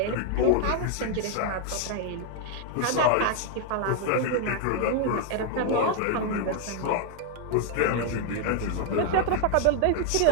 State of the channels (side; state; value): both; different; correlation 0.00